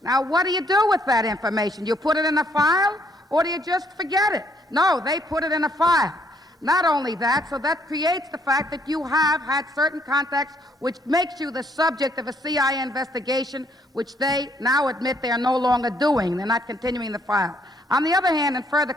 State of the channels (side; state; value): both; normal; correlation 0.68